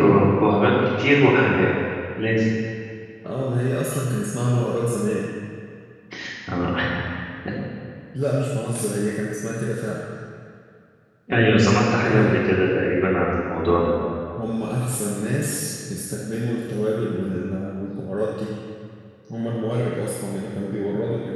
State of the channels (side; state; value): both; identical; correlation 1.00